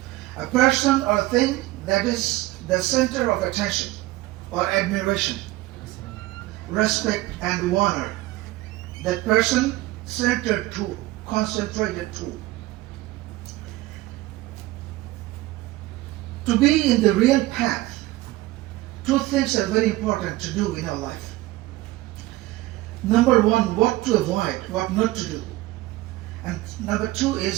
A person or thing that is the center of attention or admiration, respect and honor. That person centered to, concentrated to. To be in the real path, two things are very important to do in our life. Number one, what to avoid, what not to do. And number two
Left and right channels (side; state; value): left; quieter; 18.1 dB